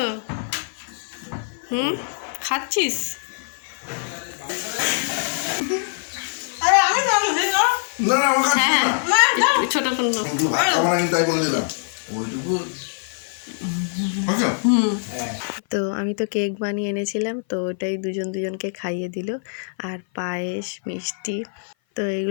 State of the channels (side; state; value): right; silent; 57 dB below the other